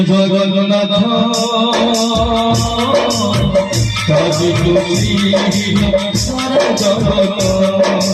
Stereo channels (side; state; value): both; identical; correlation 1.00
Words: জগন্নাথ কাজী তুলসী সারা জগত